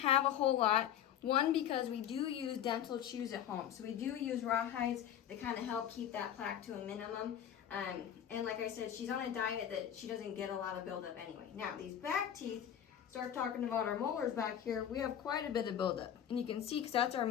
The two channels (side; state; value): right; quieter; 10.0 dB